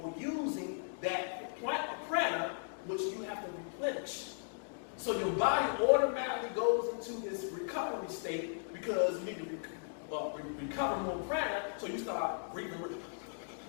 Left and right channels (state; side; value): silent; right; digital silence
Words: using that prana, which you have to replenish. So your body automatically goes into this recovery state because you need to recover more prana, so you start breathing.